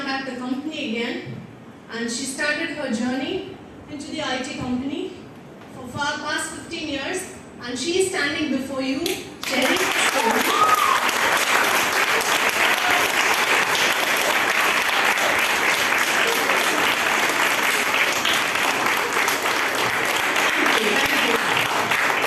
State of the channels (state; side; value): identical; both; correlation 1.00